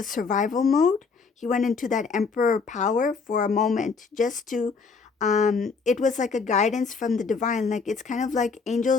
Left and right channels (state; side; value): quieter; right; 4.9 dB